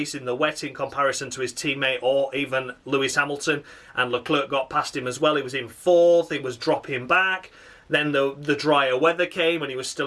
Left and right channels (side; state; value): both; identical; correlation 1.00